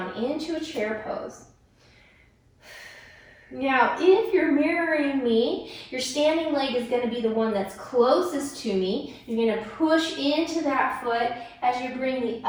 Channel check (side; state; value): both; identical; correlation 1.00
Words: into a chair pose. Now, if you're mirroring me, your standing leg is going to be the one that's closest to me. You're going to push into that foot as you bring the